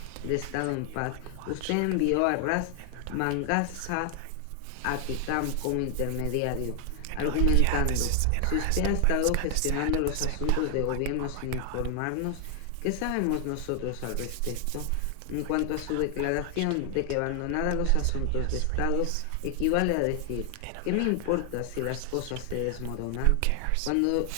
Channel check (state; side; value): different; both; correlation 0.00